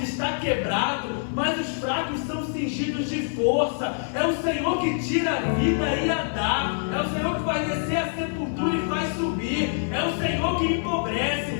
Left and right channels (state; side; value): silent; right; 56 dB below the other